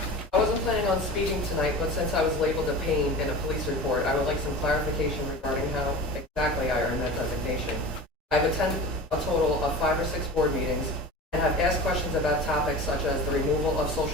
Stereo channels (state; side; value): normal; both; correlation 0.34